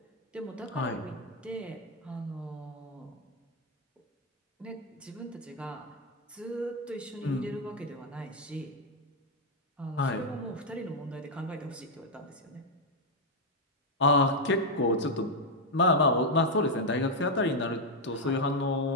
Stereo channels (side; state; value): both; normal; correlation 0.01